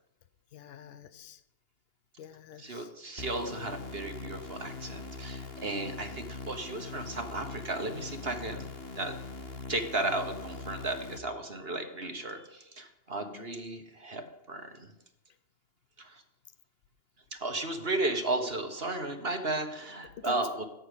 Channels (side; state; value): left; late; 2.8 ms